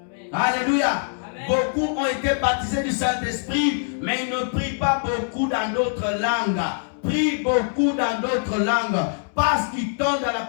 Alléluia. Amen. Beaucoup ont été baptisés du Saint-Esprit, mais ils ne prient pas beaucoup dans d'autres langues. Prie beaucoup dans d'autres langues parce qu'ils tombent dans la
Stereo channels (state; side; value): silent; right; digital silence